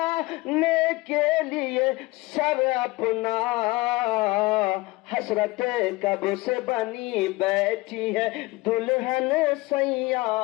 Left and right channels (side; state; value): right; quieter; 21.6 dB